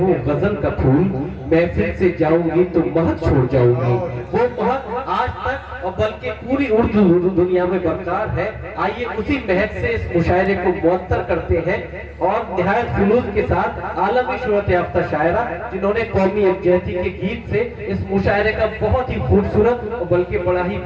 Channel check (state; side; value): identical; both; correlation 1.00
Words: गजल का फूल, महफिल से जाऊंगी तो महक छोड़ जाऊंगी। वो महक आज तक और बल्कि पूरी उर्दू दुनिया में बरकरार है। आइए उसी महक से इस मुशायरे को मुअत्तर करते हैं, और निहायत जुलूस के साथ आलमी शोहरत याफ्ता शायरा जिन्होंने कौमी यकजहती के गीत से इस मुशायरे का बहुत ही खूबसूरत और बल्कि बड़ा ही